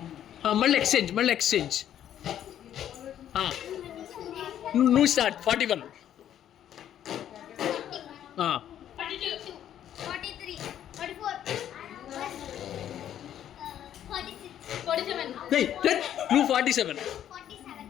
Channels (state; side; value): quieter; right; 10.6 dB